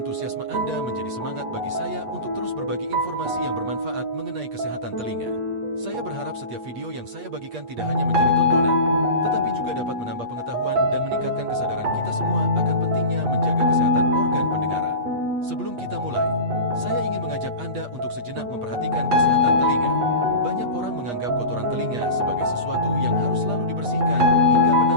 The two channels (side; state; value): left; late; 8.4 ms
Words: Anda menjadi semangat bagi saya untuk terus berbagi informasi yang bermanfaat mengenai kesehatan telinga. Saya berharap setiap video yang saya bagikan tidak hanya menjadi tontonan, tetapi juga dapat menambah pengetahuan dan meningkatkan kesadaran kita semua akan pentingnya menjaga kesehatan organ pendengaran. Sebelum kita mulai, saya ingin mengajak Anda untuk sejenak memperhatikan kesehatan telinga. Banyak orang menganggap kotoran telinga sebagai sesuatu yang harus selalu dibersihkan hingga